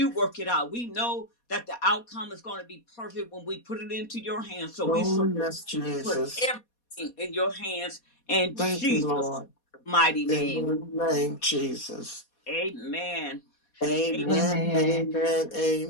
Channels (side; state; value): right; late; 4.2 ms